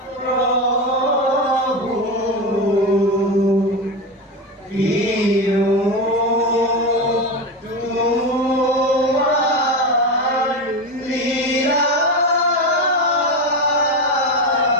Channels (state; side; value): normal; both; correlation 0.18